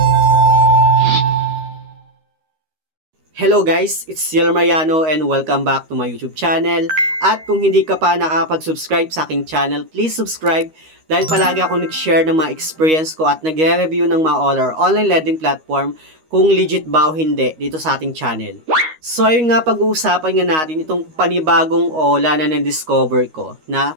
Hello guys, it's Ciel Mariano and welcome back to my YouTube channel. At kung hindi ka pa nakakapag-subscribe sa aking channel, please subscribe dahil palagi ako nag-share ng mga experience ko at nagre-review ng mga online lending platform kung legit ba o hindi dito sa ating channel. So ayun nga, pag-uusapan nga natin itong panibagong OLA na na-discover ko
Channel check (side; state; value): left; late; 13 ms